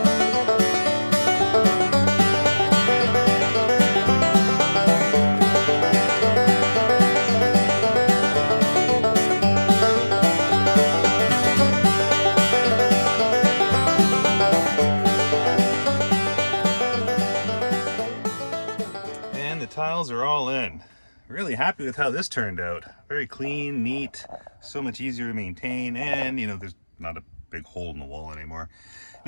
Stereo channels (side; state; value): both; inverted; correlation -1.00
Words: Tiles are all in. Really happy with how this turned out. Very clean, neat, so much easier to maintain, and there's not a big hole in the wall anymore.